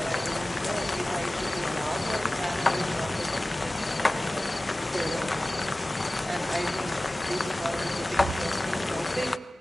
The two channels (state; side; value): normal; both; correlation 0.97